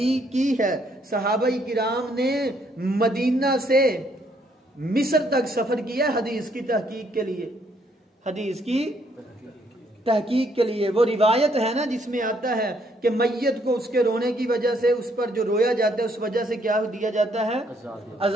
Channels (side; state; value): both; normal; correlation 0.69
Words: की है। सहाबाई किराम ने मदीना से मिस्र तक सफर किया हदीस की तहकीक के लिए, हदीस की तहकीक के लिए। वो रिवायत है ना जिसमें आता है कि मैयत को उसके रोने की वजह से, उस पर जो रोया जाता है उस वजह से क्या दिया जाता है?